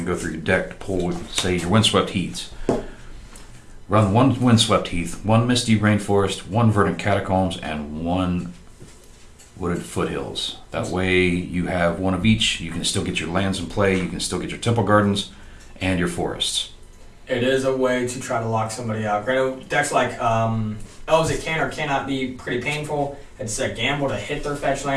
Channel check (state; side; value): identical; both; correlation 1.00